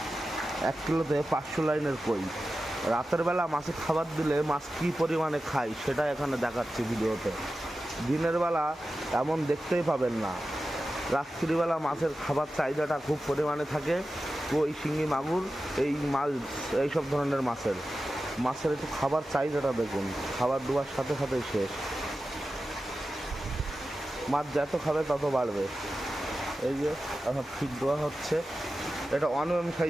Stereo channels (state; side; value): normal; both; correlation 0.93